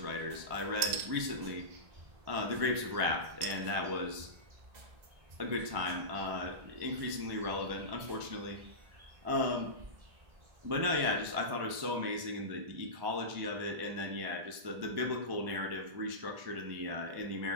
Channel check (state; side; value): late; left; 1.1 ms